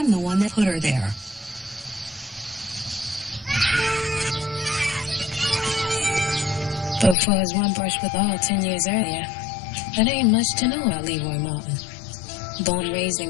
the one that put her there. But for his one brush with all 10 years earlier, there ain't much to know about Leroy Martin. Born and raised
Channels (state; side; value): drops out; right; at 7.2 s